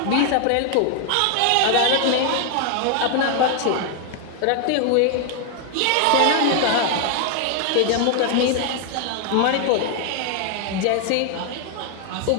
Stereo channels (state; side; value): different; both; correlation 0.00